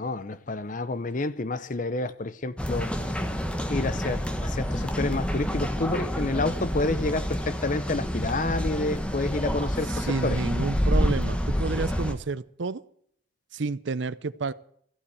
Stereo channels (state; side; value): normal; both; correlation 0.61